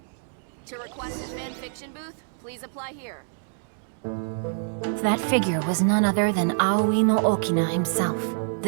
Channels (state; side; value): silent; left; digital silence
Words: To request a fanfiction booth, please apply here. That figure was none other than Aoi no Okina himself.